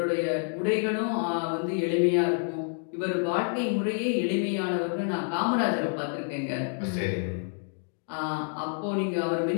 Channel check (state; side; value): silent; right; 59 dB below the other